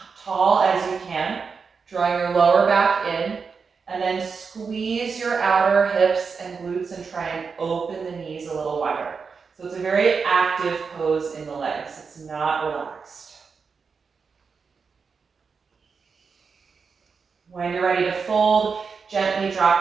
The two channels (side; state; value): left; quieter; 5.4 dB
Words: tall as you can, drawing your lower back in, and then squeeze your outer hips and glutes and try and open the knees a little wider. So it's a very active pose in the legs. It's not relaxed. When you're ready to fold, gently